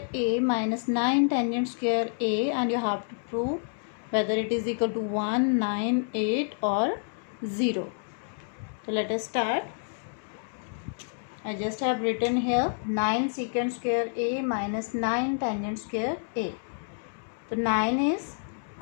a minus 9 tangent square a, and you have to prove whether it is equal to 1, 9, 8 or 0. So let us start. I just have written here 9 secant square a minus 9 tangent square a. So 9 is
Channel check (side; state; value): right; silent; digital silence